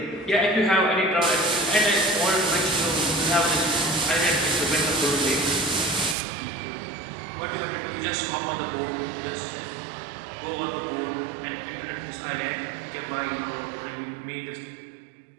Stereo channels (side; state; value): left; drops out; at 6.2 s